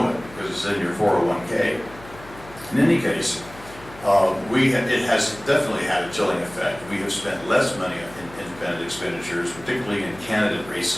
it because it's in your 401k. In any case, it has definitely had a chilling effect. We have spent less money in independent expenditures, particularly in candidate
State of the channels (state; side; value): noise; left; hum, 19 dB below the sound